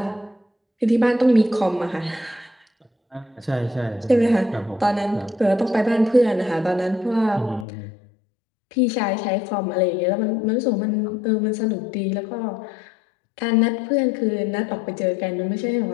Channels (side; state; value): right; drops out; at 7.7 s